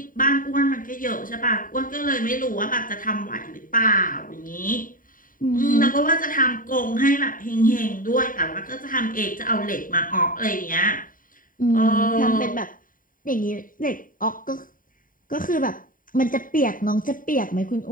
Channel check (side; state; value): right; late; 0.40 ms